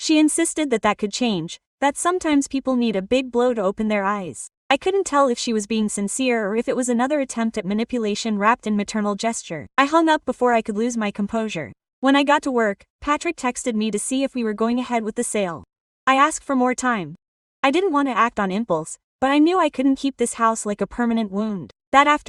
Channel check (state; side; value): identical; both; correlation 1.00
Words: insisted that that could change, that sometimes people need a big blow to open their eyes. I couldn't tell if she was being sincere or if it was another attempt at manipulation wrapped in maternal gesture. I hung up before I could lose my composure. When I got to work, Patrick texted me to see if we were going ahead with the sale. I asked for more time. I didn't want to act on impulse, but I knew I couldn't keep this house like a permanent wound. That